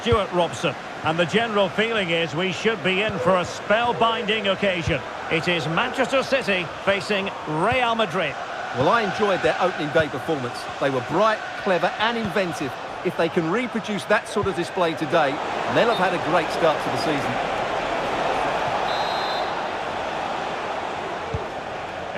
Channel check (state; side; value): identical; both; correlation 1.00